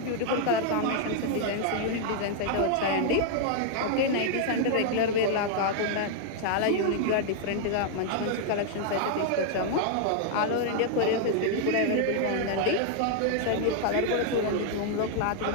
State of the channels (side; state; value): both; different; correlation 0.00